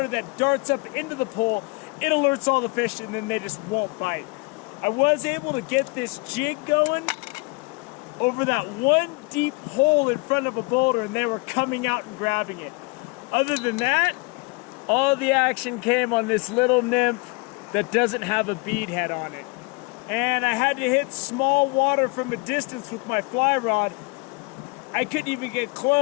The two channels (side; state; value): right; quieter; 28.7 dB